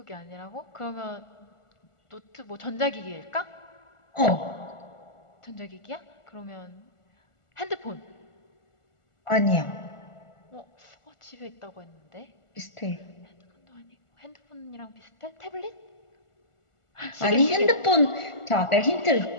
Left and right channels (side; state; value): right; late; 1.4 ms